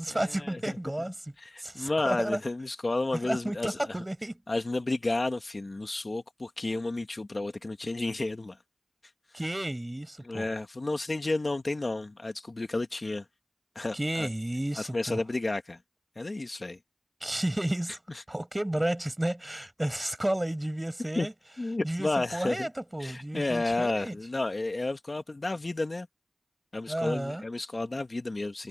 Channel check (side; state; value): both; normal; correlation 0.98